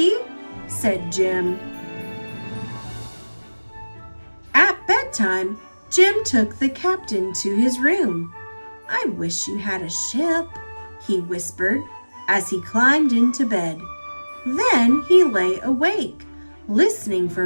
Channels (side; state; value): both; inverted; correlation -1.00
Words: said Jim. At bedtime, Jim took the captain to his room. "I wish you had a ship," he whispered as he climbed into bed. Then he lay awake, listening